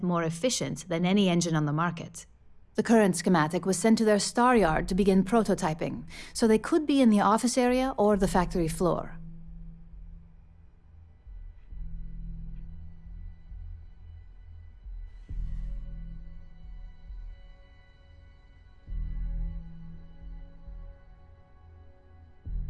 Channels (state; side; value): identical; both; correlation 1.00